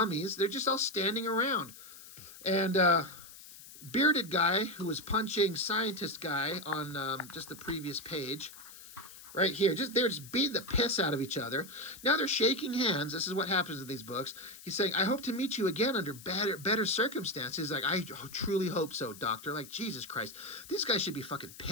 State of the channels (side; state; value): left; noise; hiss, 17 dB below the sound